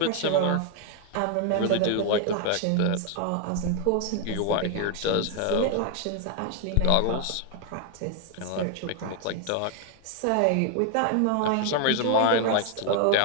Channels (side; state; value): both; different; correlation 0.00